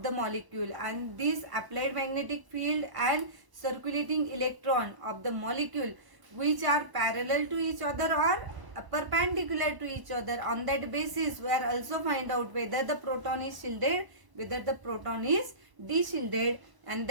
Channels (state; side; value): late; left; 1.0 ms